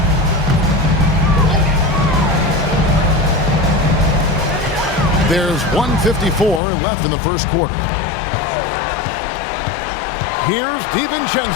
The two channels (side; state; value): right; drops out; at 6.6 s